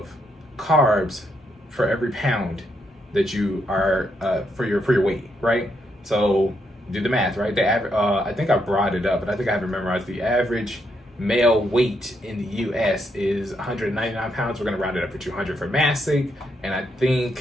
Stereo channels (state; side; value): normal; both; correlation 0.78